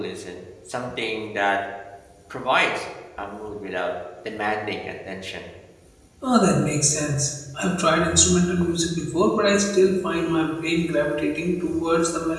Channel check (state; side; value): identical; both; correlation 1.00